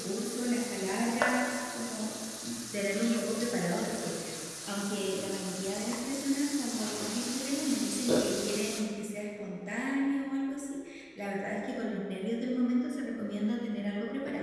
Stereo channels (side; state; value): both; identical; correlation 1.00